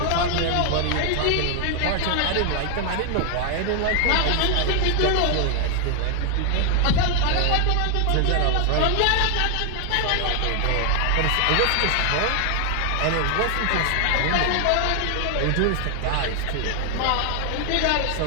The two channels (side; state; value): both; different; correlation 0.00